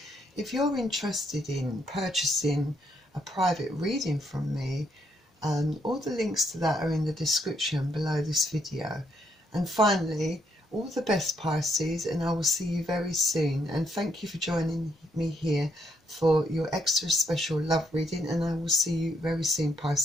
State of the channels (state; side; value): normal; both; correlation 0.74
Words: if you're interested in purchasing a private reading from me, all the links to that are in the description below this video. And finally, all the best, Pisces, and I will see you very soon. And thank you for joining me here for your extra special love reading, and I will see you very soon,